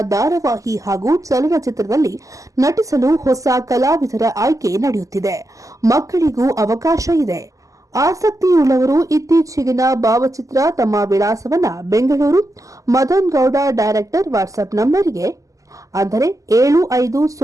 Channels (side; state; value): left; late; 0.16 ms